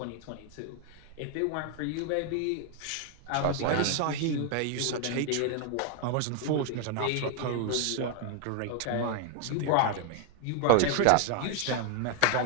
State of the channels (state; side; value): different; both; correlation 0.01